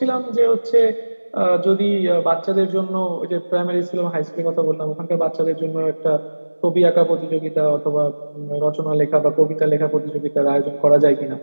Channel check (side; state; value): both; inverted; correlation -1.00